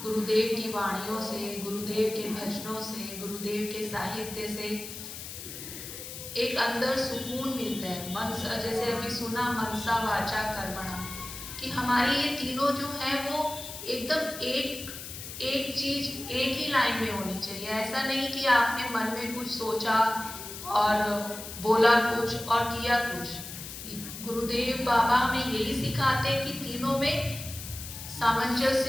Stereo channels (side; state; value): left; noise; hiss, 10 dB below the sound